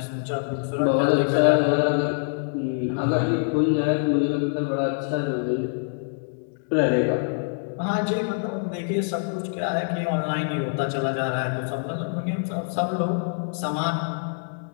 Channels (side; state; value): right; silent; digital silence